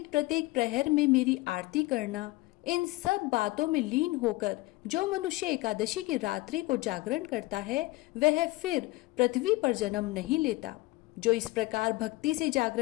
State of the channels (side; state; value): right; quieter; 21.0 dB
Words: प्रत्येक प्रहर में मेरी आरती करना, इन सब बातों में लीन होकर जो मनुष्य एकादशी की रात्रि को जागरण करता है वह फिर पृथ्वी पर जन्म नहीं लेता। जो इस प्रकार भक्ति से